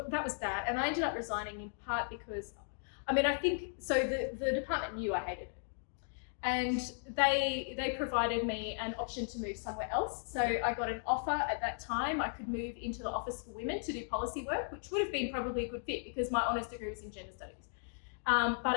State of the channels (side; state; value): right; silent; digital silence